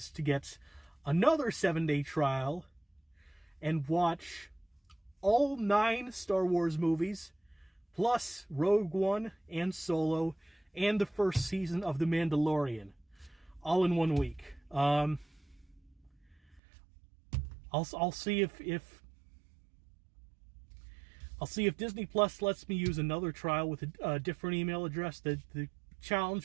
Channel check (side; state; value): left; drops out; at 16.6 s